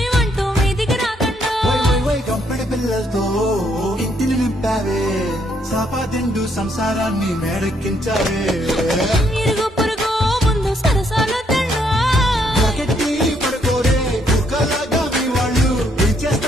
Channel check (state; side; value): normal; both; correlation 0.72